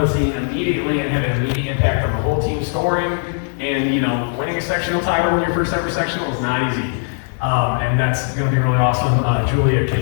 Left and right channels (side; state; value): right; silent; 58 dB below the other